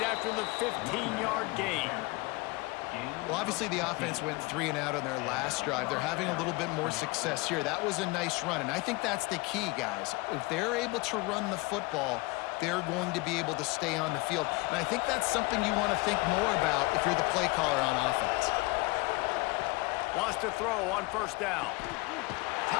after the 15-yard gain. Well, obviously the offense went 3 and out on their last drive. They're having a little bit more success here. That was a nice run, and I think that's the key, guys. If they're able to run the football, they're going to be able to stay on the field. And I think that's something you want to think more about if you're the play caller on offense. Wants to throw on 1st down.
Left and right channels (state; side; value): quieter; right; 24.1 dB